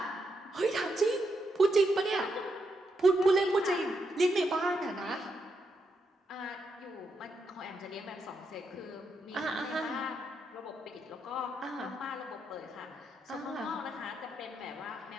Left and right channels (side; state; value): both; normal; correlation 0.81